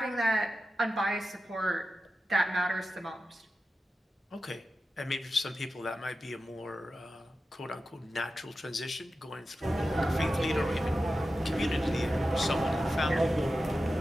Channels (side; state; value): both; normal; correlation 0.93